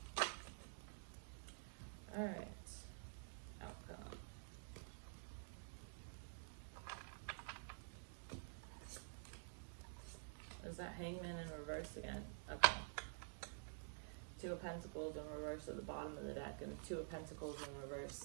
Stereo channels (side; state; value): left; silent; digital silence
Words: Alright, outcome. Is that Hangman in reverse again? Okay. 2 of Pentacles in reverse at the bottom of the deck, and 2 of Pentacles in